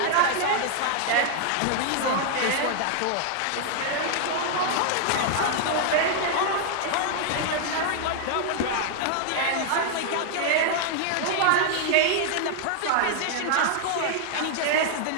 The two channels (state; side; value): different; both; correlation 0.00